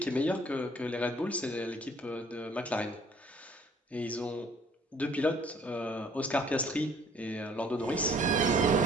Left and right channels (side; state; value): both; normal; correlation 0.57